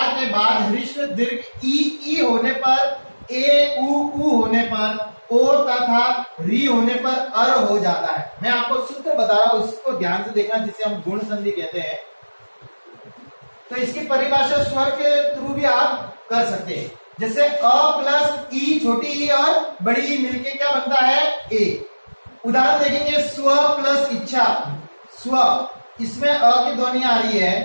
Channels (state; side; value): inverted; both; correlation -1.00